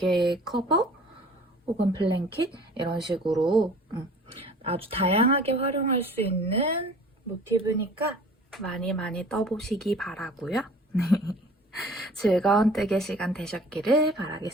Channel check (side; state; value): both; normal; correlation 0.47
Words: 커버 혹은 블랭킷 이런 식으로 아주 다양하게 활용할 수 있는 모티브니까 많이 떠보시기 바라고요. 즐거운 뜨개 시간 되셨기를